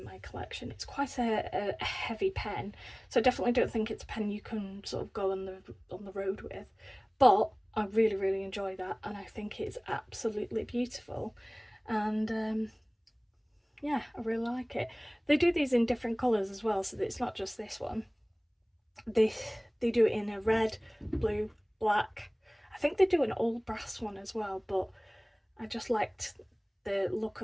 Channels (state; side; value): identical; both; correlation 1.00